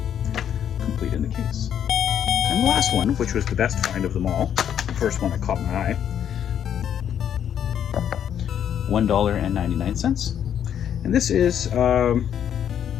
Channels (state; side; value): quieter; right; 9.3 dB